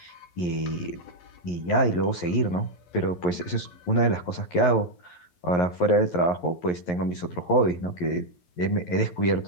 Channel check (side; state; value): right; late; 11 ms